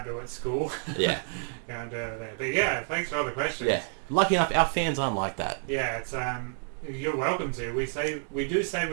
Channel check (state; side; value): silent; left; 59 dB below the other